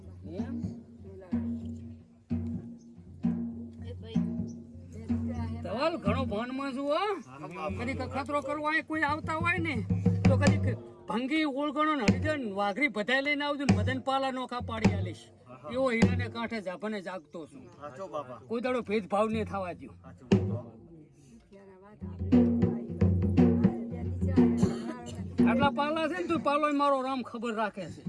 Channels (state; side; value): identical; both; correlation 1.00